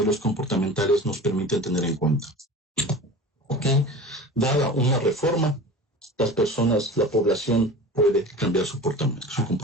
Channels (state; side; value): normal; both; correlation 0.36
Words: comportamentales nos permiten tener en cuenta. ¿Ok? Dada una reforma, la población puede cambiar su